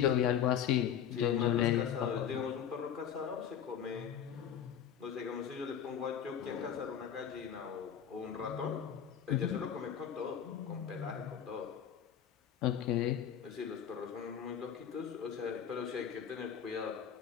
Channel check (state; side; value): quieter; right; 8.9 dB